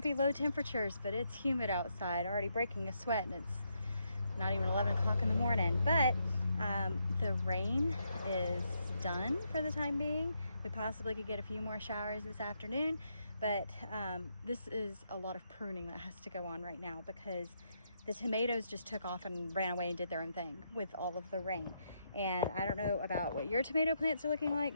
be low temperatures, but it's humid outside, already breaking a sweat, and it's not even 11 o'clock in the morning. But the rain is done for the time being. We possibly could get a few more showers this afternoon, but this is a lot of pruning that has to go on right now because the tomatoes just took off and ran away and did their own thing with all of the rain. And I don't know about what your tomato plants are looking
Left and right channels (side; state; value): both; inverted; correlation -0.78